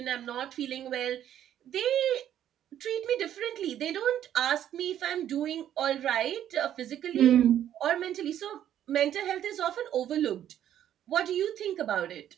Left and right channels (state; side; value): quieter; left; 10.9 dB